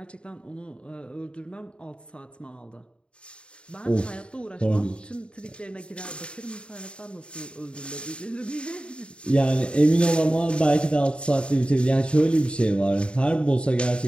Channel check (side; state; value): right; late; 0.055 ms